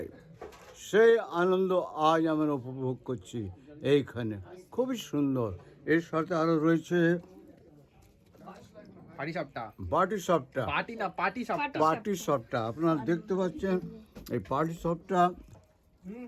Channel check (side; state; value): both; identical; correlation 1.00